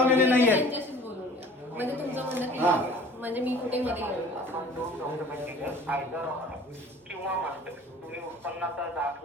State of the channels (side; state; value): both; normal; correlation 0.47